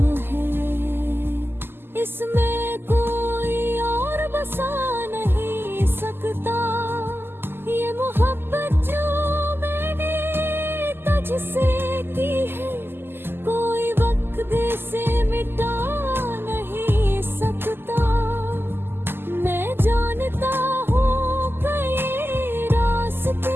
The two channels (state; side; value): late; left; 0.11 ms